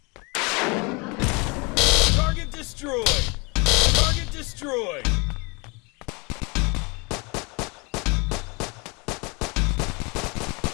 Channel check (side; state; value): right; quieter; 29.3 dB